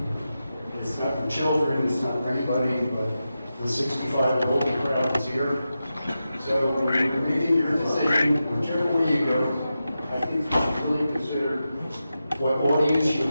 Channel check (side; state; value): both; inverted; correlation -0.91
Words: It's not for children, it's not for anybody, but the 65 and older crowd is here. So when you're making your decision, whichever way you go, I think you should really consider what audience you